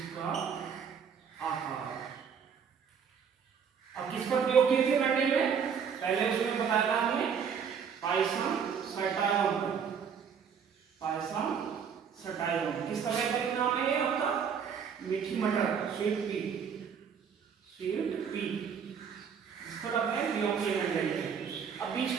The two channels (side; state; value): left; quieter; 7.0 dB